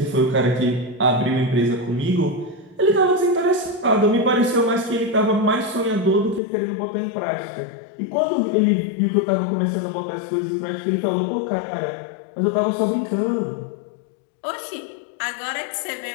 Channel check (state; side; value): drops out; right; at 6.4 s